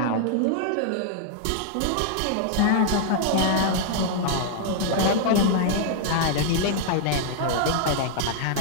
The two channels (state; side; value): different; both; correlation -0.01